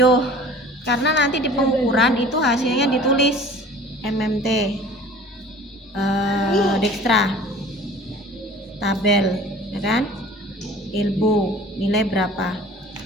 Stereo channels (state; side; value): normal; both; correlation 0.45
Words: Karena nanti di pengukuran itu hasilnya ditulis MMT, dextra, tabel, ya kan? Elbow, nilai berapa?